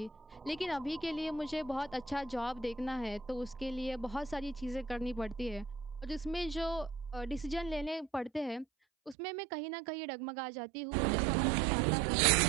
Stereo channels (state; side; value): drops out; left; at 9.2 s